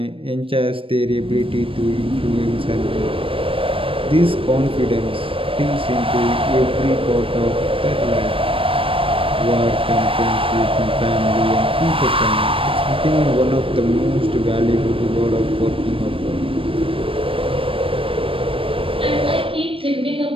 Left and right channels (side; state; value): left; late; 0.26 ms